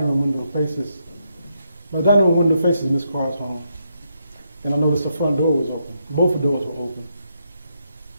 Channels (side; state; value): both; inverted; correlation -0.79